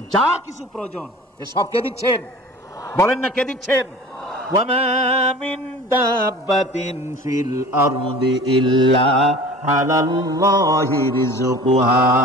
যা কিছু প্রয়োজন, এ সব কে দিচ্ছেন? বলেন না, কে দিচ্ছেন? ওয়ামা মিন দাব্বাতিন ফিল আরদি ইল্লা আলাল্লাহি রিজকুহা।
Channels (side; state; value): both; normal; correlation 0.42